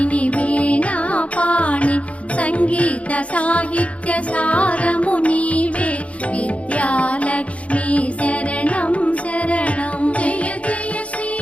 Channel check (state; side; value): late; right; 0.064 ms